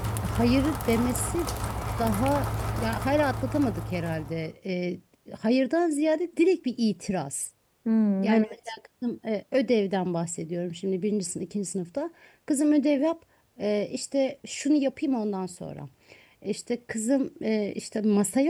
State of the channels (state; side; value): identical; both; correlation 1.00